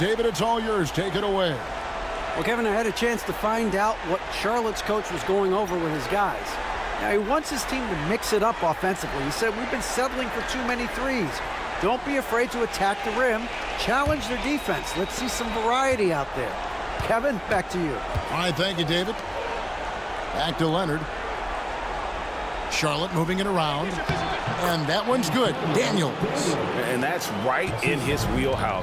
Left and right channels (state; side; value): identical; both; correlation 1.00